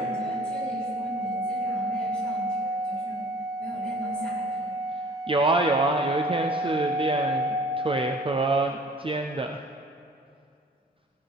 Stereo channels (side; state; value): both; normal; correlation 0.50